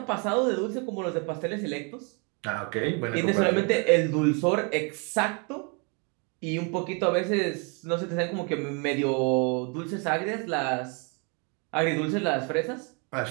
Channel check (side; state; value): left; quieter; 34.8 dB